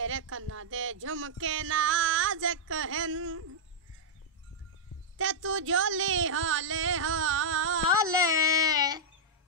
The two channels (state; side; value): normal; both; correlation -0.06